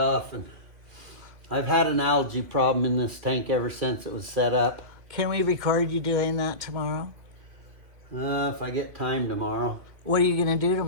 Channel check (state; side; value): late; left; 2.5 ms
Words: and I've had an algae problem in this tank ever since it was set up. Can we record you doing that tomorrow? If I get time tomorrow. What are you going to do